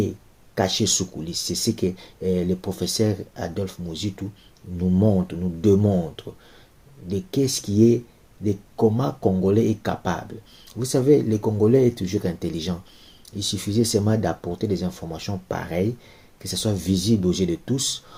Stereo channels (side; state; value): both; identical; correlation 1.00